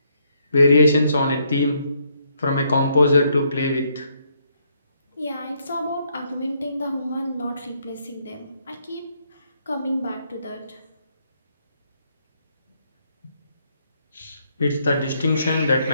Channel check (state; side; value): inverted; both; correlation -0.73